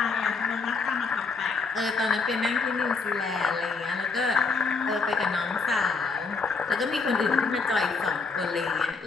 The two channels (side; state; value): right; quieter; 4.5 dB